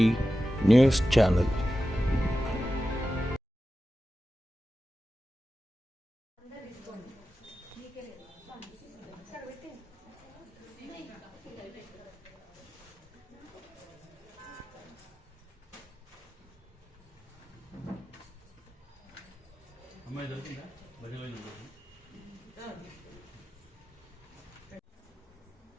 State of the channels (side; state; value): both; normal; correlation 0.93